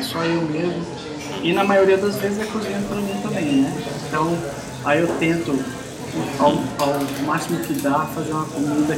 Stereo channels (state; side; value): identical; both; correlation 1.00